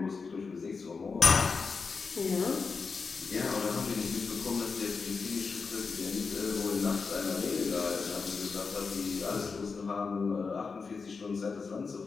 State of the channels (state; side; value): quieter; right; 4.9 dB